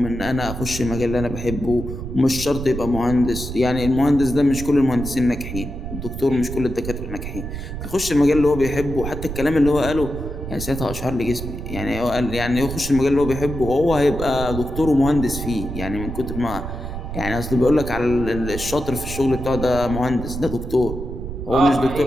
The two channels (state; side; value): noise; right; rumble, 7 dB below the sound